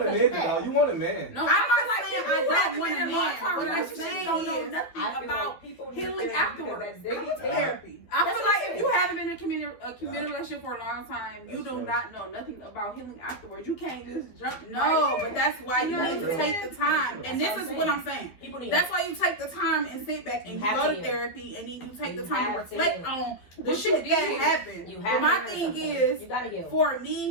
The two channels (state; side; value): late; right; 12 ms